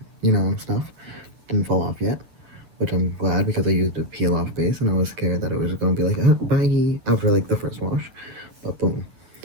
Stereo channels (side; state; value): left; late; 9.5 ms